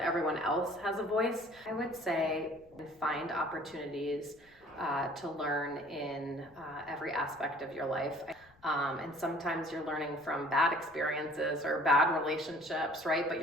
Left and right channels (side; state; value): left; noise; rumble, 30 dB below the sound